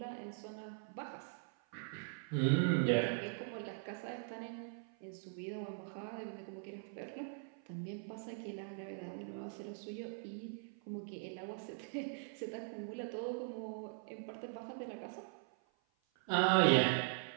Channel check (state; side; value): silent; left; 50 dB below the other